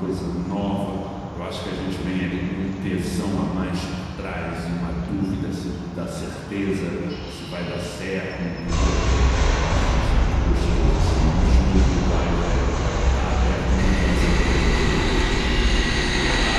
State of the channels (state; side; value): identical; both; correlation 1.00